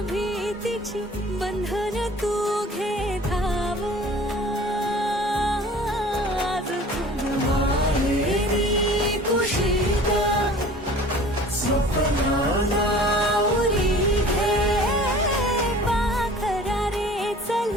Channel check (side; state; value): both; normal; correlation 0.46